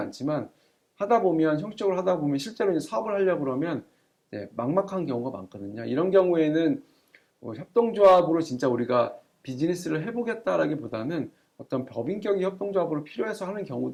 형식적으로 하다 보면 실제로 이제 사업을 하려고 그러면 막막한 경우가 많거든요. 이런 경우에는 협동조합으로 진짜 우리가 비즈니스를 해보겠다라기보다는 어떤 법인격의 협동조합으로 필요해서 하는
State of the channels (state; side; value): identical; both; correlation 1.00